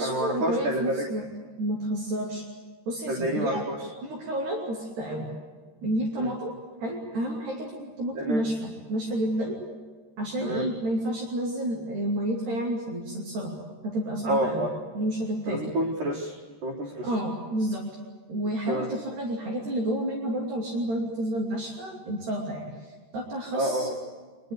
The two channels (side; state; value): left; late; 13 ms